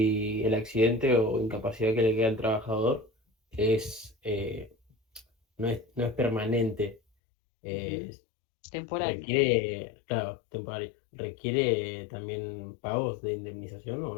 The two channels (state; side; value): drops out; right; at 7.0 s